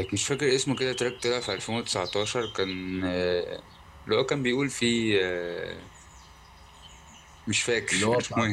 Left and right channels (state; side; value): identical; both; correlation 1.00